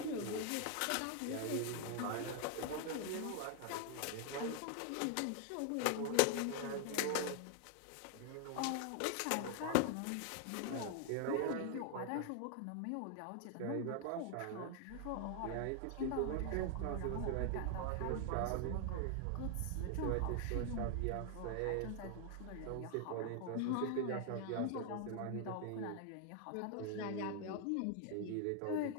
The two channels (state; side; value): different; both; correlation 0.00